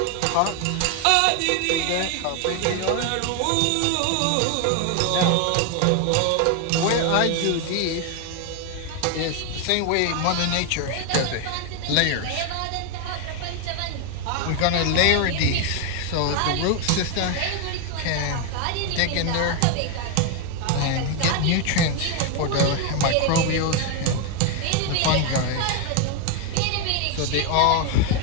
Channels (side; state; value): both; different; correlation 0.01